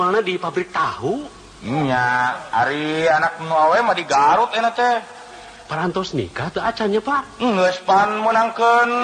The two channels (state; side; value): identical; both; correlation 1.00